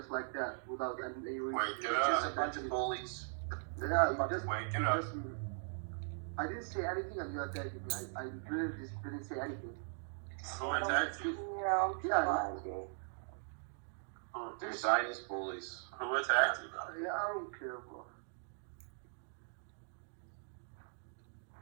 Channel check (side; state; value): left; silent; digital silence